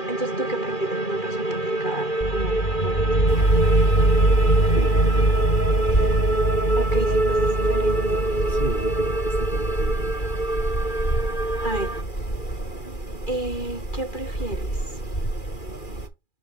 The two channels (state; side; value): late; right; 2.4 ms